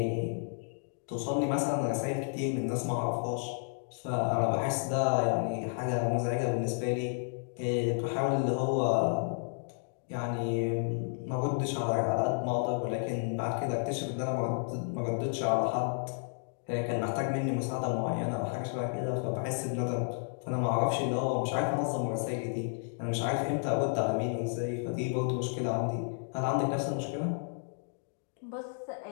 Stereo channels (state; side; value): silent; right; digital silence